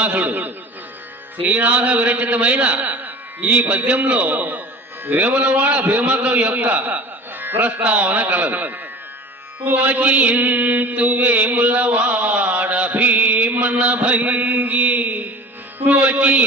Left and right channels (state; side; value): normal; both; correlation 0.38